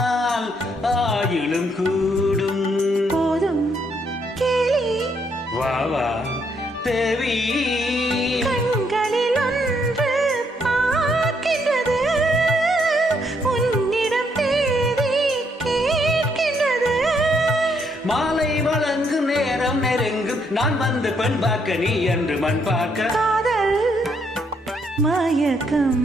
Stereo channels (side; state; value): both; normal; correlation 0.73